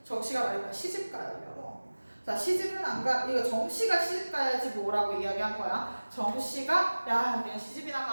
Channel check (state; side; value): inverted; both; correlation -1.00